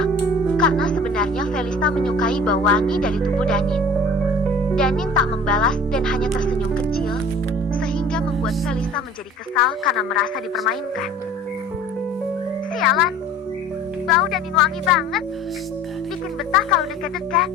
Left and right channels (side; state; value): both; normal; correlation 0.45